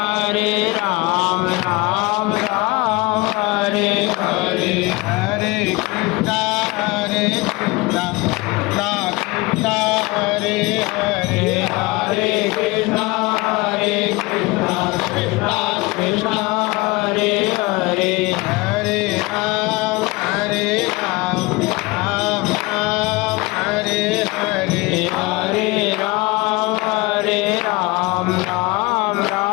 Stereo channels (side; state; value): right; quieter; 23.7 dB